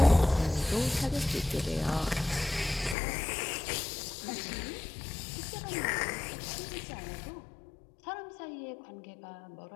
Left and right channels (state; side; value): drops out; right; at 3.0 s